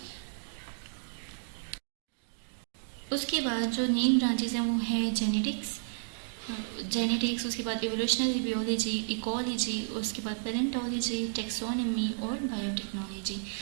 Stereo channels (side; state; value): left; silent; digital silence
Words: उसके बाद जो नेम ब्रांचेस हैं वो है जेनेटिक्स, उसके बाद एवोल्यूशनरी बियोलॉजी, इकोलॉजी, उसके बाद पैलेंटोलॉजी, टेक्सोनॉमी और बायोटेक्नोलॉजी।